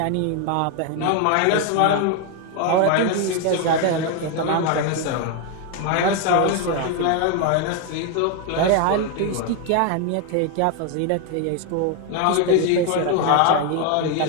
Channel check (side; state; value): both; different; correlation 0.01